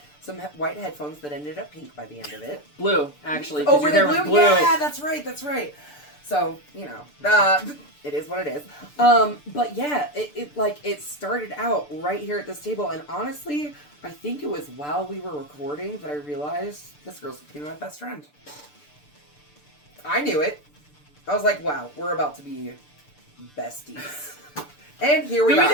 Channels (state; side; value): late; right; 6.8 ms